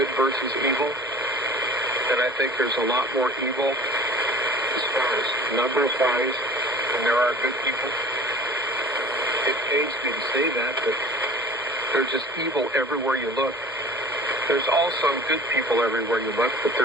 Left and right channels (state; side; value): normal; both; correlation 0.43